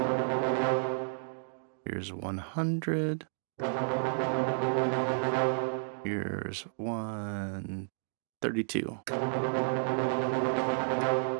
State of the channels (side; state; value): left; silent; digital silence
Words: Here's 100. Here's 132.